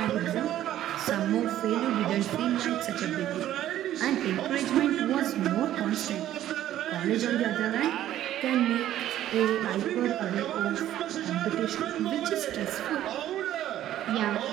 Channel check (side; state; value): left; quieter; 12.6 dB